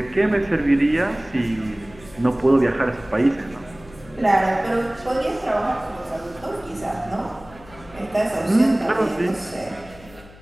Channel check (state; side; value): noise; left; hum, 22 dB below the sound